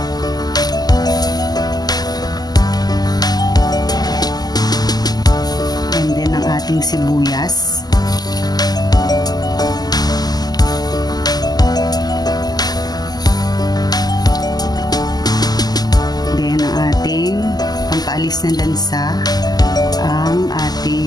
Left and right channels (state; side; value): late; right; 0.20 ms